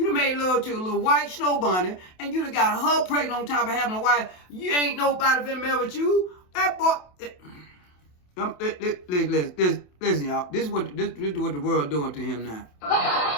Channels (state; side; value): late; right; 27 ms